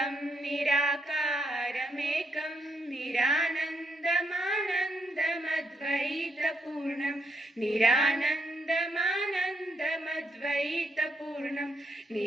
निराकारमेकं निरानन्दमानन्दमद्वैतपूर्णं निरानन्दमानन्दमद्वैतपूर्णं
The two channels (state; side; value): normal; both; correlation 0.76